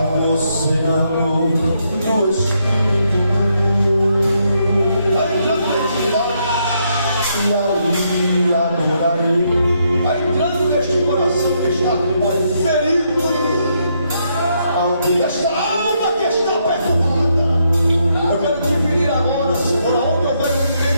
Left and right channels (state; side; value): inverted; both; correlation -0.76